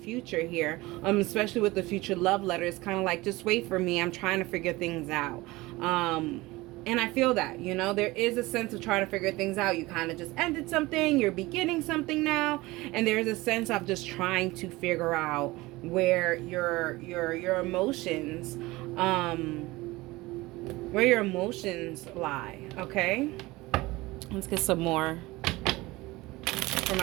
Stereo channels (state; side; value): quieter; left; 20.6 dB